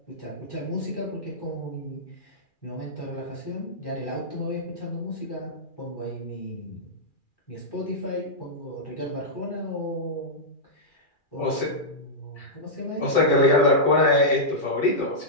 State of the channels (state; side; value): late; right; 2.4 ms